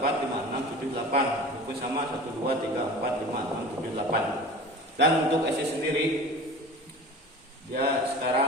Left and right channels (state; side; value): normal; both; correlation 0.37